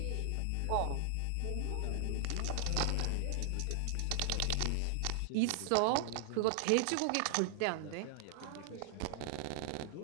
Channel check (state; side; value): different; both; correlation 0.00